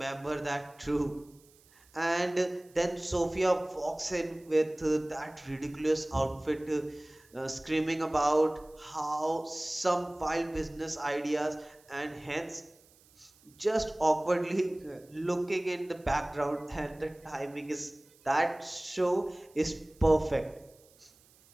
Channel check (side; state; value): right; noise; hiss, 29 dB below the sound